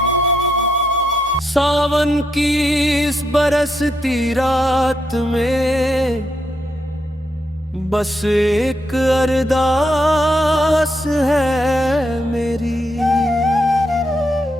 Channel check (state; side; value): normal; both; correlation 0.80